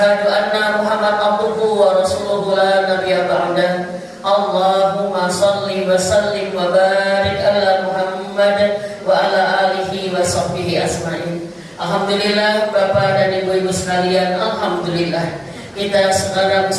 anna Muhammad abduhu wa rasuluhu la nabiyya ba'dah. Allahumma shalli wa sallim wa barik ala Muhammad wa ala alihi wa sahbihi asma'in. Alhamdulillah Bapak dan Ibu-ibu sekalian, alhamdulillah kita sekarang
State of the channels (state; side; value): identical; both; correlation 1.00